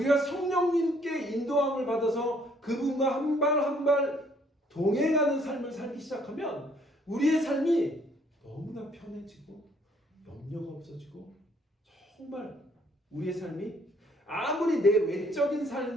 성령님께 인도함을 받아서 그분과 한 발 한 발 동행하는 삶을 살기 시작하면 우리의 삶이 너무나 편해지고 염려가 없어지고 정말 우리의 삶이 아무리 내 외적인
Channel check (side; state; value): both; normal; correlation 0.64